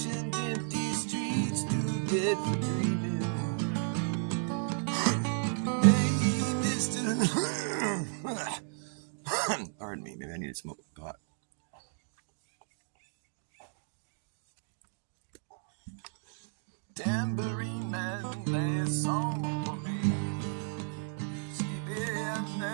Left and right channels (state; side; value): silent; left; 55 dB below the other